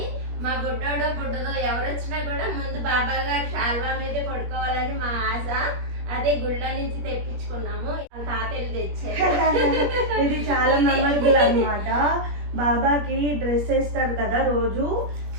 మా గుడ్డోడో గుడ్డదో ఎవరు వచ్చినా కూడా ముందు బాబా గారు శాల్వా మీదే పడుకోవాలని మా ఆశ. అదే గుళ్ళో నుంచి తెప్పించుకున్నాము, తాతయ్యలు తెచ్చారు. ఇది చాలా మెమరబుల్ అనమాట. బాబాకి డ్రెస్ వేస్తారు కదా రోజు,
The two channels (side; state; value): left; late; 21 ms